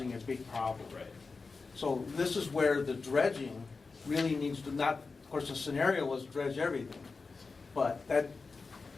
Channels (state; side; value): quieter; right; 4.3 dB